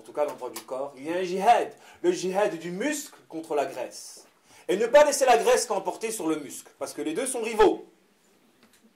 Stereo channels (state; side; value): identical; both; correlation 1.00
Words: tout cas, dans le droit du corps, il y a un djihad, le djihad du muscle contre la graisse. Et ne pas laisser la graisse l'emporter sur le muscle, parce que les deux sont rivaux.